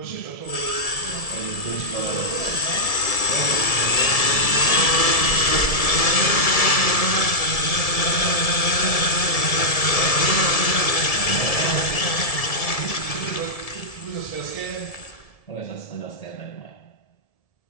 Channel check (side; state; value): right; late; 1.7 ms